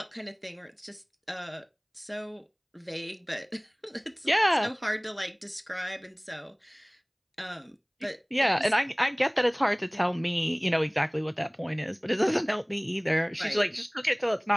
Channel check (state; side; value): identical; both; correlation 1.00